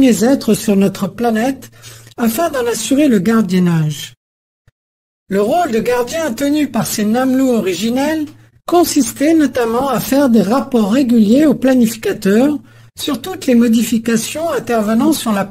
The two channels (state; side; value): identical; both; correlation 1.00